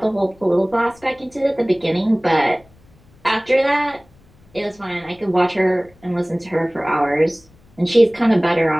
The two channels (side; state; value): left; noise; rumble, 29 dB below the sound